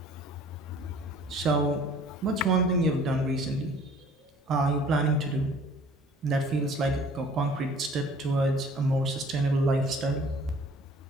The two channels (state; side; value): normal; both; correlation 0.52